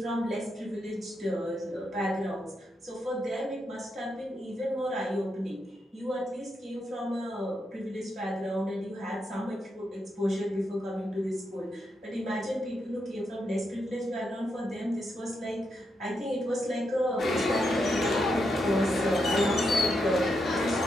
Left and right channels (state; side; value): normal; both; correlation 0.82